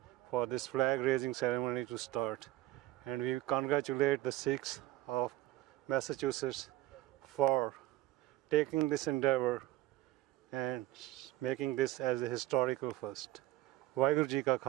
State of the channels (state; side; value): quieter; left; 16.2 dB